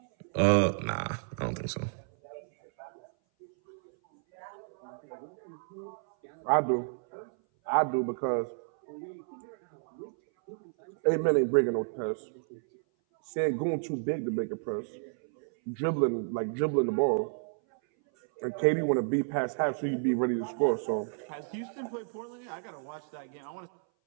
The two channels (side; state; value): left; silent; 57 dB below the other